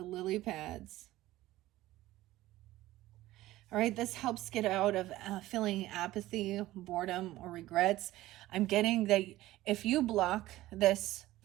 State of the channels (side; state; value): left; quieter; 16.3 dB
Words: lily pads. All right, this helps get out of feeling apathy, boredom, or regrets. I'm getting that if you block this